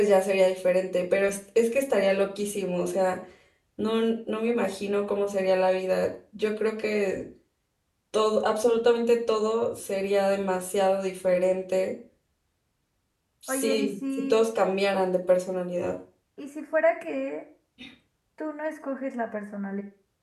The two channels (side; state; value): both; identical; correlation 1.00